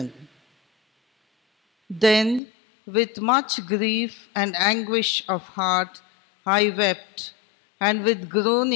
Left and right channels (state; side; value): drops out; right; at 2.4 s